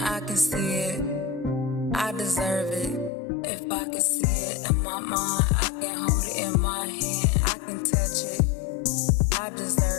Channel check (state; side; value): drops out; right; at 3.1 s